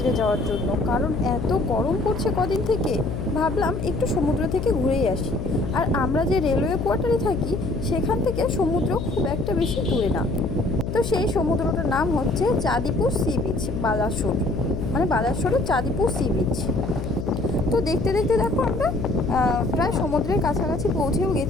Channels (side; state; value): left; noise; hum, 5 dB below the sound